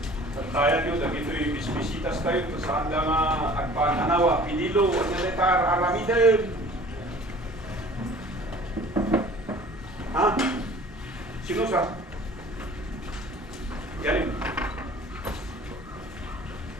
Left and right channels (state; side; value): normal; both; correlation 0.47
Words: tayo nyo, dagito yung bisbisitas tayo, saan lang agpananawa, pinilo, analitar, aramidem. Ha? Sino sa? Galing.